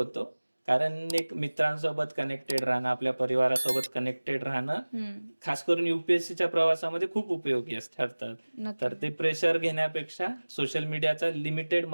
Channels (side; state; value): both; inverted; correlation -1.00